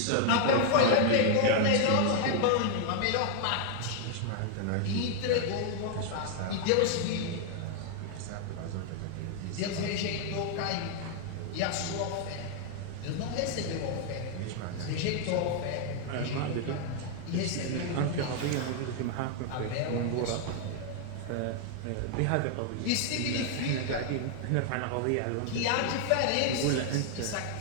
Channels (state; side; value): different; both; correlation 0.00